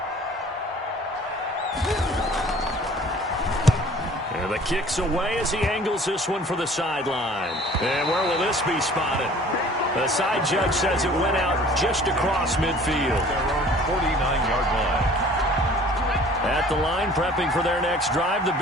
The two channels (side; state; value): both; normal; correlation 0.50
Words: And the kick's away as he angles this one for the sideline. And where will this be spotted? The side judge says it went out just across midfield. Their own 49-yard line. At the line, prepping for their next drive, the